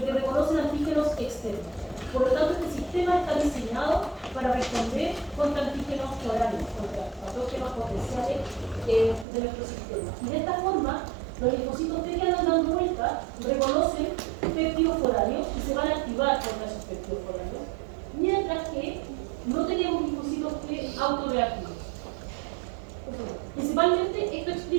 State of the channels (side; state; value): left; drops out; at 9.2 s